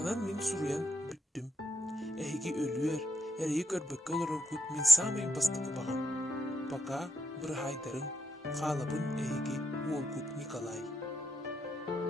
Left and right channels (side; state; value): both; normal; correlation 0.82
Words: min suruyan büttüm. Ehigi ölüer, eriyi körbökke olurur kut min samayın bastıkı bağım. Baka bir haydarın, qalabın ehigi Volkut Nikolay.